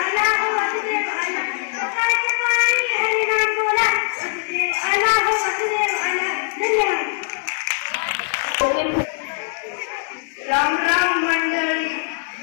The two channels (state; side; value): silent; right; 65 dB below the other